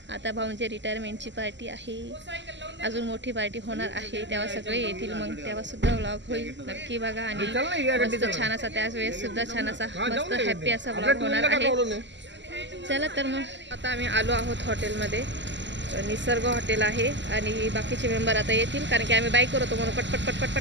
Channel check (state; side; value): late; left; 0.53 ms